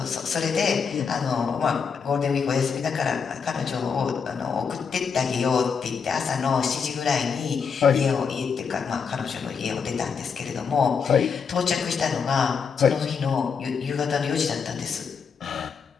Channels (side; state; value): right; quieter; 6.1 dB